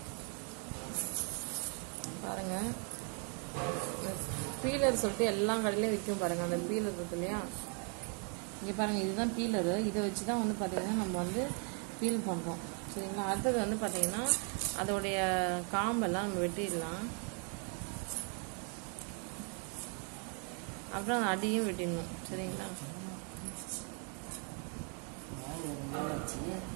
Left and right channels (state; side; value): quieter; left; 39.4 dB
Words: பாருங்கள், பீலர் சொல்லிட்டு எல்லா கடையிலையும் விற்கும் பாருங்கள். அந்த பீலர் இருக்கு இல்லையா, இங்கே பாருங்கள், இதுதான் பீலரு. இதை வச்சு தான் வந்து பார்த்திங்கன்னா நம்ம வந்து பீல் பண்ணுறோம், சரிங்களா? அடுத்தது வந்து பார்த்திங்கன்னா அதோடைய காம்பெல்லாம் நம்ம வெட்டிடலாம். அப்புறம் அந்த அடியும் வெட்டிடணும், சரிங்களா?